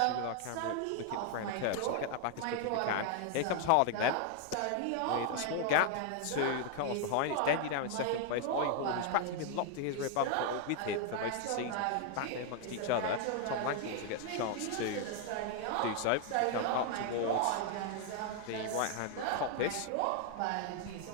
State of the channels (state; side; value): different; both; correlation 0.00